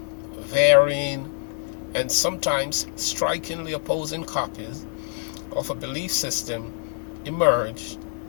varying and sometimes strikingly opposing copies of a belief system emerge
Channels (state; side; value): silent; right; digital silence